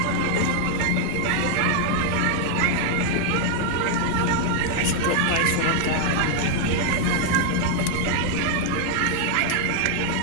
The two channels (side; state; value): both; different; correlation 0.00